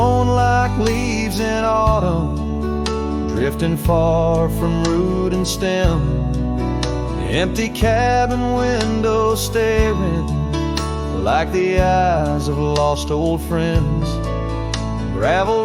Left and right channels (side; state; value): both; identical; correlation 1.00